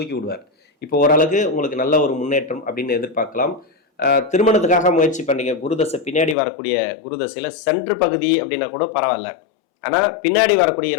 விடுவார். இப்போ ஓரளவுக்கு உங்களுக்கு நல்ல ஒரு முன்னேற்றம் அப்படின்னு எதிர்பார்க்கலாம். திருமணத்துக்காக முயற்சி பண்ணீங்க, குருதசை பின்னாடி வரக்கூடிய குருதசையில் சென்ட்ரு பகுதி அப்படின்னா கூட பரவாயில்ல. ஆனால் பின்னாடி வரக்கூடிய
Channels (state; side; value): drops out; right; at 6.4 s